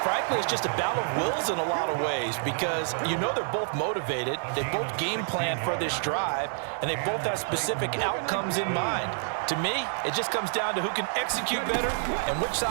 it's just a battle of wills in a lot of ways because you know they're both motivated. They both game plan for this drive, and they both have specific outcomes in mind. To me, it just comes down to who can execute better and which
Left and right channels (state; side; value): silent; left; 59 dB below the other